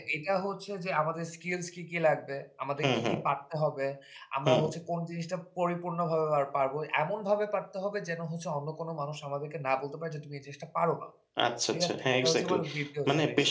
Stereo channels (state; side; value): identical; both; correlation 1.00